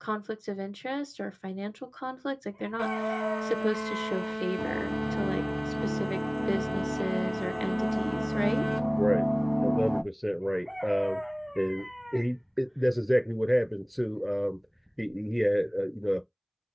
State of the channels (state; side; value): identical; both; correlation 1.00